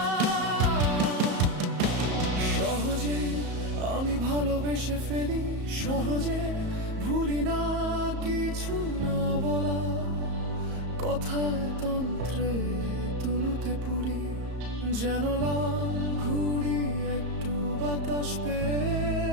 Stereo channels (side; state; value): left; late; 34 ms